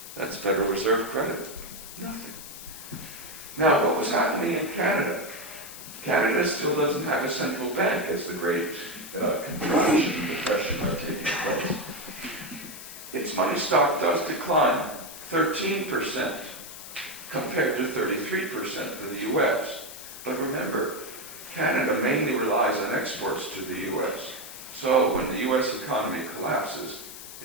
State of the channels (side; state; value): left; noise; hiss, 13 dB below the sound